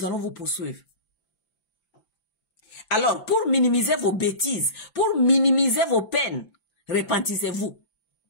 allons vous poursuivre. Alors, pour minimiser vos bêtises, pour minimiser vos peines, repentissez-vous.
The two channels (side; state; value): right; late; 5.9 ms